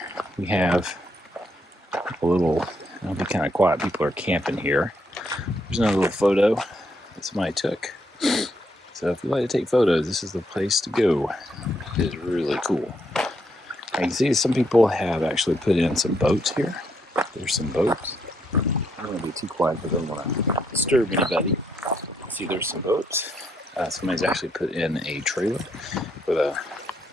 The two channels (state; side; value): normal; both; correlation 0.75